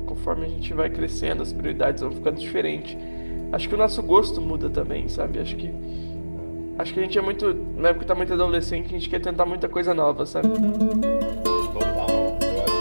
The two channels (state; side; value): inverted; both; correlation -1.00